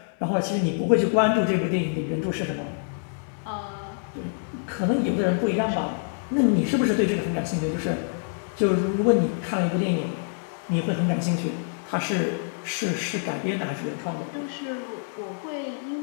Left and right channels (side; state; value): right; silent; 61 dB below the other